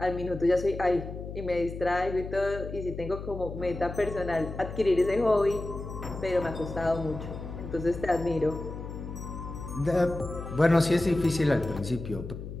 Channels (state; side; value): noise; left; hum, 9 dB below the sound